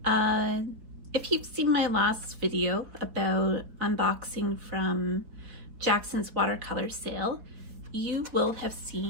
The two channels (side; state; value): left; late; 4.2 ms